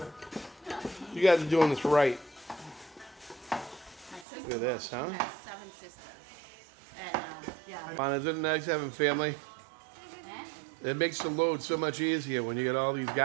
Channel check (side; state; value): left; drops out; at 4.2 s